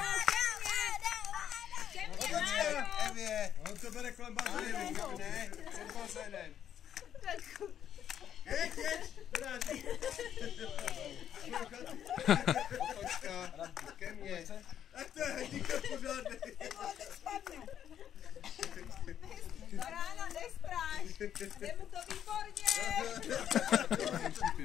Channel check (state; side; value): quieter; right; 9.7 dB